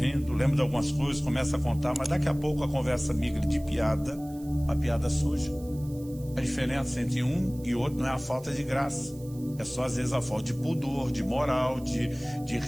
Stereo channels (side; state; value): right; noise; hiss, 23 dB below the sound